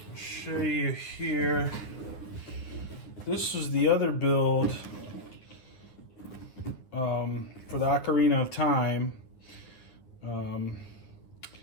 show you here. This is the other build for the Ocarina of Time.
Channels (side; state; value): right; late; 9.6 ms